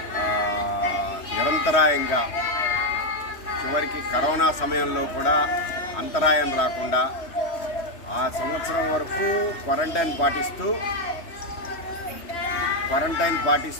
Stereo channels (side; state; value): right; late; 3.1 ms